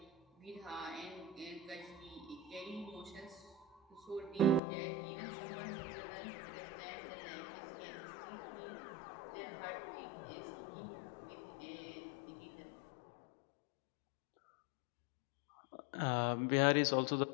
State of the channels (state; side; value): drops out; right; at 4.6 s